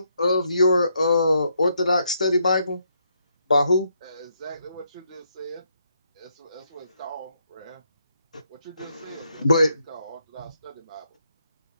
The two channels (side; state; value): both; inverted; correlation -0.76